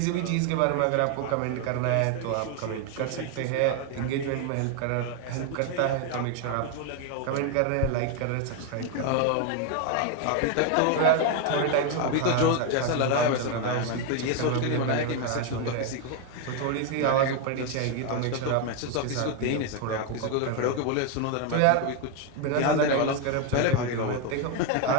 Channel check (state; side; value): different; both; correlation 0.01